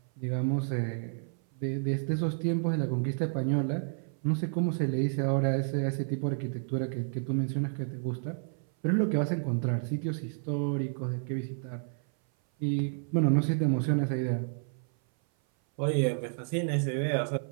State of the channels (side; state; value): left; silent; 56 dB below the other